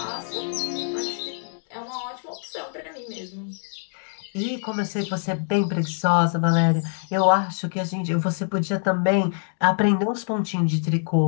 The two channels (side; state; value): right; silent; 59 dB below the other